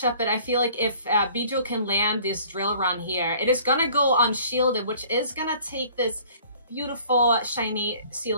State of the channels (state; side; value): inverted; both; correlation -0.52